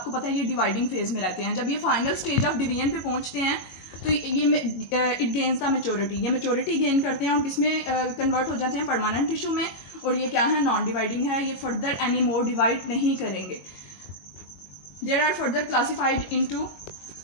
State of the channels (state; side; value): late; right; 22 ms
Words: पता है ये डिवाइडिंग फेज में रहते हैं, जब ये फाइनल स्टेज ऑफ डिवीजन पे पहुंचते हैं तो ये इट गेन्स द मेच्योरिटी. ये मेच्योरिटी गेन करते हैं और किसमें कन्वर्ट हो जाते हैं? परमानेंट टिश्यू में. और ये क्या है? नॉन डिवाइडिंग है, ये फर्दर एनी मोर डिवाइड नहीं करेंगे. They are further classified into